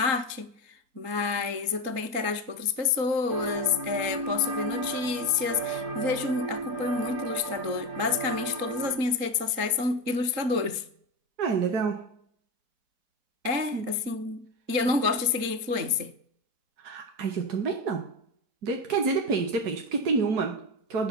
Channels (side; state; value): left; late; 3.8 ms